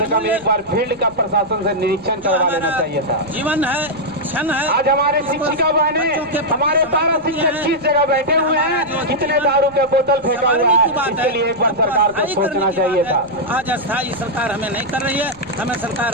कम एक बार फील्ड का प्रशासन से निरीक्षण करवा लेना चाहिए था। जीवन है, क्षण है। आज हमारे शिक्षिका बहनें, हमारे पारा शिक्षक किस जगह बैठे हुए हैं, कितने दारू के बोतल फेंका हुआ है, इसके लिए एक बार सरकार को सोचना चाहिए था। आज अस्थायी सरकार हमें नहीं कर रही है, हमें सरकार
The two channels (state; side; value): noise; left; rumble, 24 dB below the sound